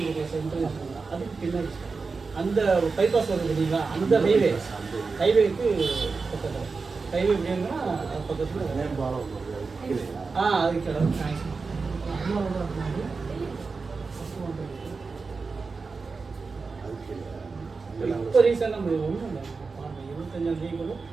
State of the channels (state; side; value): quieter; left; 4.5 dB